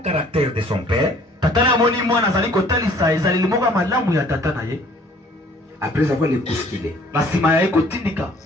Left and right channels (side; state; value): both; normal; correlation 0.56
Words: caractère de son père. Après avoir les bousculé.